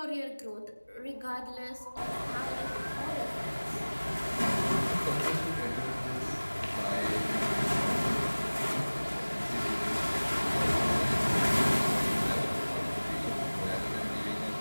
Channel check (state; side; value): inverted; both; correlation -1.00